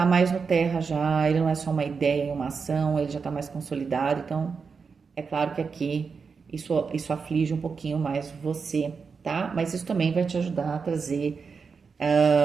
mais no terra já, ele não é só uma ideia, uma ação, ele já está mais consolidado. Então, é claro que aqui isso aflige um pouquinho mais você, tá? Mas isso também vai te ajudar a trazer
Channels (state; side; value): quieter; left; 5.4 dB